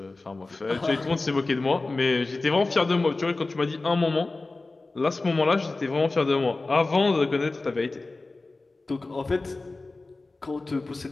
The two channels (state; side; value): quieter; right; 3.3 dB